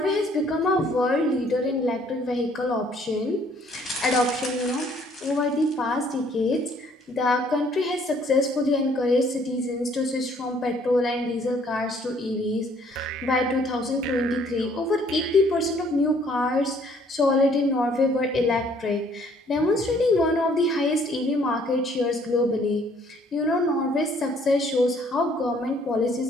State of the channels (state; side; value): normal; both; correlation 0.62